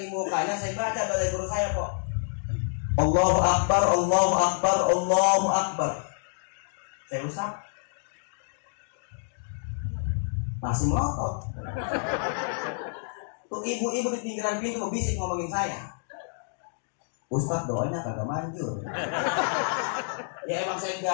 di mukanya, saya baca dari guru saya kok. Allahu Akbar, Allahu Akbar, Allahu Akbar. Saya usap. Masih melotot. Tuh ibu-ibu di pinggiran pintu bisik ngomongin saya. Ustaz doanya kagak manjur. Ya emang saya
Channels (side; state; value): right; silent; digital silence